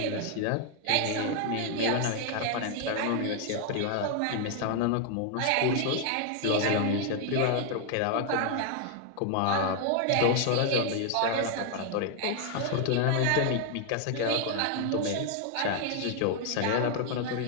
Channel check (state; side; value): different; both; correlation 0.00